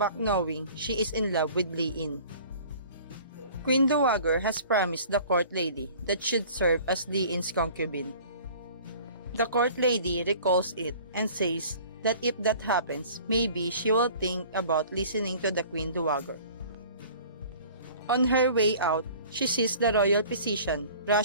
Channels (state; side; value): inverted; both; correlation -0.47